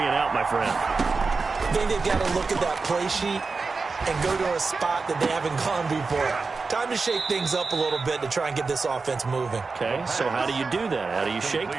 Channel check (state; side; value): quieter; left; 4.3 dB